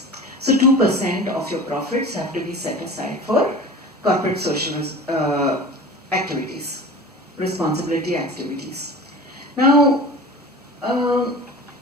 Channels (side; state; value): both; normal; correlation 0.36